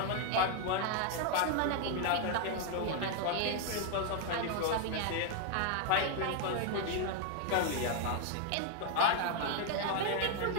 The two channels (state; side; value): different; both; correlation 0.00